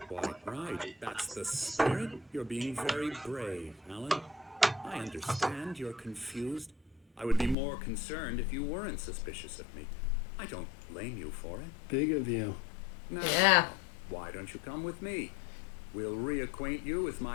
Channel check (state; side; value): drops out; right; at 7.6 s